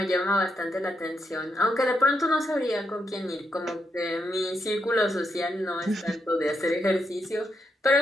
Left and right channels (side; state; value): both; normal; correlation 0.81